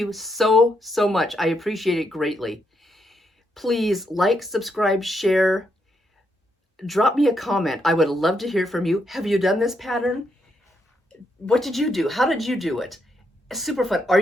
so, so much. I appreciate it greatly. Please like, subscribe, share, drop me a comment. I would love to hear from you. Have you done this pattern? What did you do? How did you do it? Super fun.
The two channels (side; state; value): both; normal; correlation 0.79